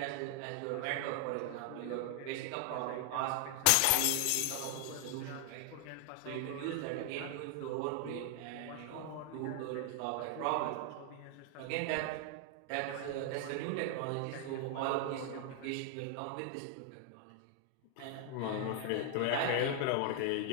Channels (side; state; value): both; different; correlation 0.00